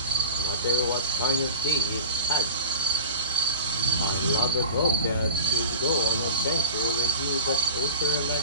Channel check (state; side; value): inverted; both; correlation -0.33